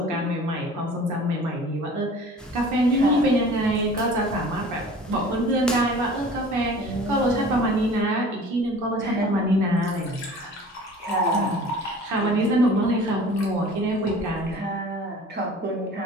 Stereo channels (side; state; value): both; normal; correlation 0.44